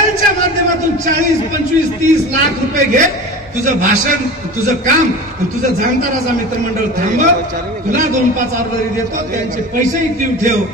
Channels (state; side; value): normal; both; correlation 0.33